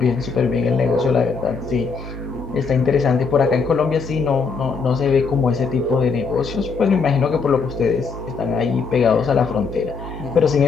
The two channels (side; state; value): right; quieter; 5.1 dB